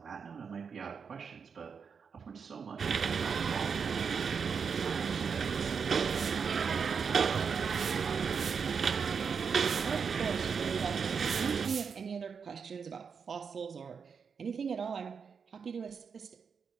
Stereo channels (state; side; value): quieter; left; 6.1 dB